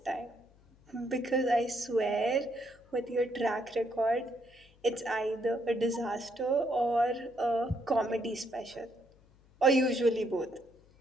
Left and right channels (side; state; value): left; noise; hum, 28 dB below the sound